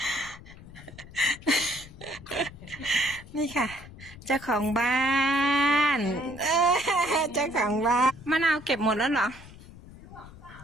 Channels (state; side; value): noise; left; rumble, 18 dB below the sound